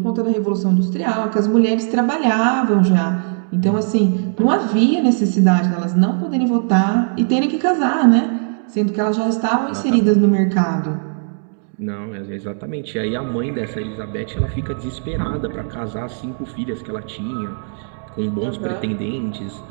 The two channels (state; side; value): silent; left; 67 dB below the other